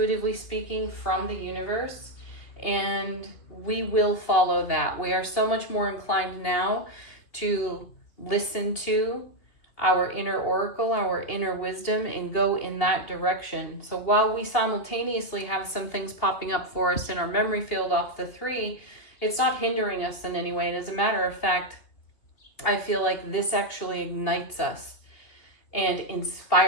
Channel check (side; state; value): right; late; 2.8 ms